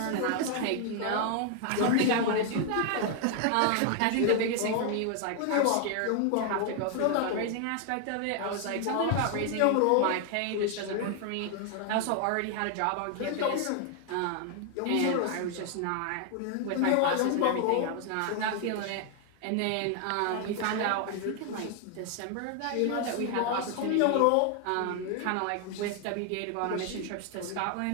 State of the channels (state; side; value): different; both; correlation 0.00